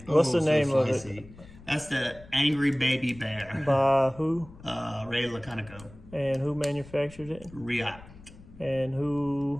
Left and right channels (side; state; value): left; noise; rumble, 20 dB below the sound